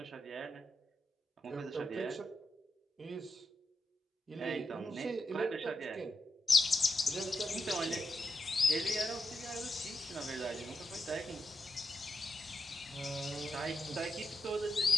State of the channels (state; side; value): normal; both; correlation 0.86